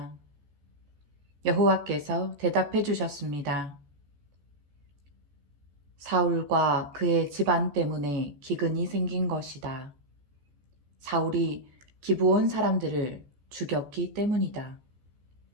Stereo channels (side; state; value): left; late; 14 ms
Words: 여호와께서 대답해 주셨습니다. 사울과 그의 집안 때문에 기근이 생긴 것이다. 사울이 기브온 사람들을 죽였기 때문이다.